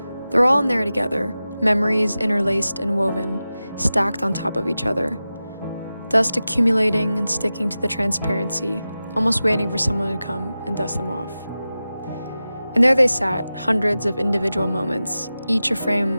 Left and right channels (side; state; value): both; inverted; correlation -0.94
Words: They're all in there together, memories interlaced and woven, stacked on top of each other. Dust accumulating and sticking to the transparency, almost waiting for someone to come and dust them off. And there they sat, hundreds of individual moments, each a frame